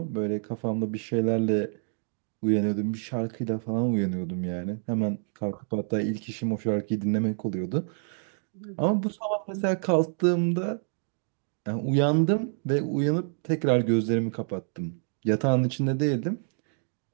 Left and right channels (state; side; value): silent; left; 57 dB below the other